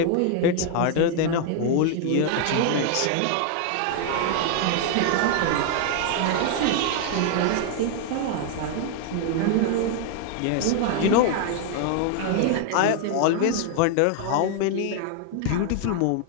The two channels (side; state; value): both; different; correlation 0.00